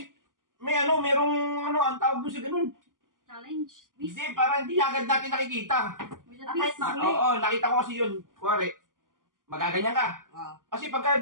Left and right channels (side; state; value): left; late; 0.89 ms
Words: ang tawag doon sa ganun. Challenge. Hindi, para hindi agad natin nakikita. With a Kahit twist. mahuli. Oo, nakita ko kasi yun. Kuwari, magaganyan ka. Ah. Kasi pagka